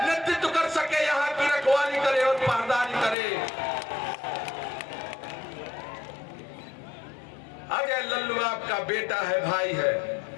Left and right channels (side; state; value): right; drops out; at 3.2 s